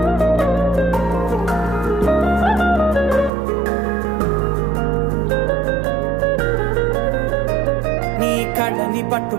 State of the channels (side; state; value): left; drops out; at 3.3 s